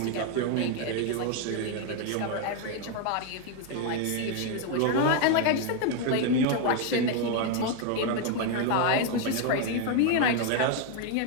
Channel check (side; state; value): both; different; correlation 0.01